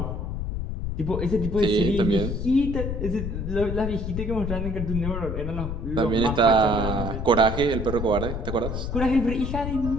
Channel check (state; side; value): noise; left; rumble, 4 dB below the sound